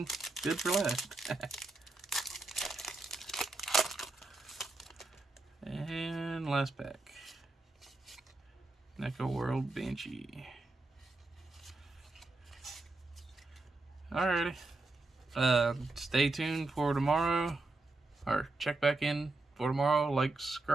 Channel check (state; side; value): quieter; left; 3.1 dB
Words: good for last. And last pack. NECA World Banshee. Alrighty. Stay tuned for tomorrow. Or check back in for tomorrow. Like,